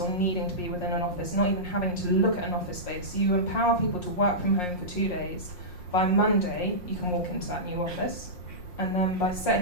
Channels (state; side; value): late; right; 5.6 ms